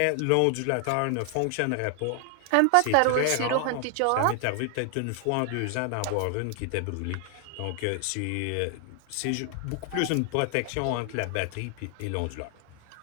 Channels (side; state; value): both; different; correlation 0.00